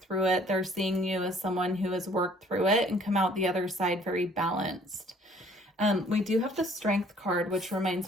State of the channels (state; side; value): normal; both; correlation 0.58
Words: it, they're seeing you as someone who has worked through it and come out the other side very balanced. We do have the Strength card, which